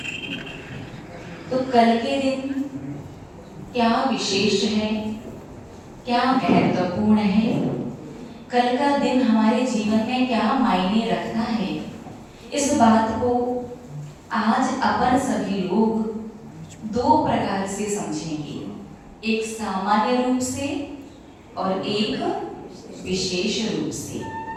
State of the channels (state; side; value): identical; both; correlation 1.00